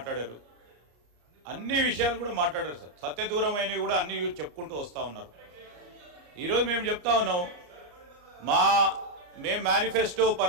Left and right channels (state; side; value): late; left; 34 ms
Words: అన్ని విషయాలు కూడా మాట్లాడారు సార్. సత్యదూరమైనవి కూడా అన్ని చెప్పుకుంటూ వస్తూ ఉన్నారు. ఈరోజు మేము చెప్తా ఉన్నాం, మేము మేనిఫెస్టో